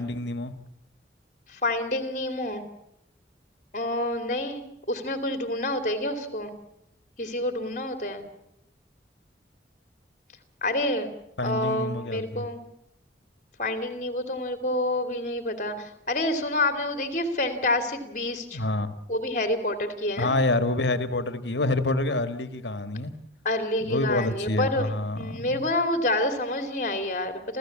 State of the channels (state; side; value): normal; both; correlation 0.07